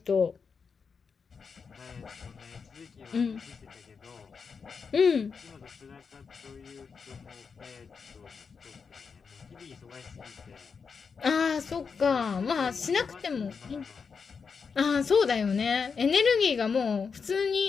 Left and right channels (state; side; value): quieter; right; 5.6 dB